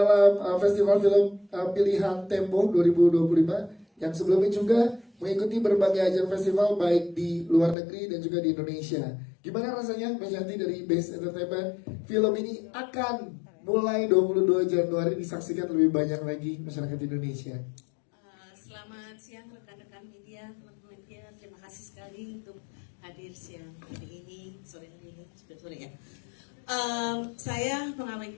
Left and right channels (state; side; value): drops out; right; at 7.8 s